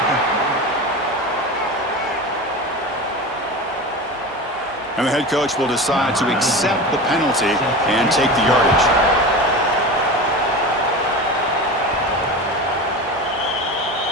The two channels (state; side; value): normal; both; correlation 0.28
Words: And the head coach will decide to accept the penalty and take the yardage.